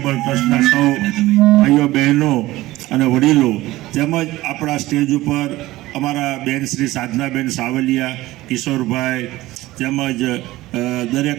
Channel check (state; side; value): quieter; left; 17.5 dB